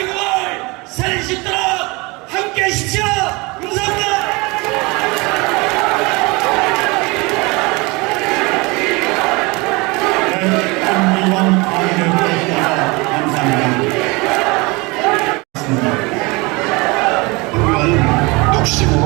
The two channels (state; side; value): quieter; left; 25.7 dB